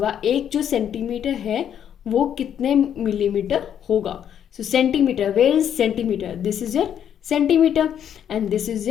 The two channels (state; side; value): quieter; right; 9.3 dB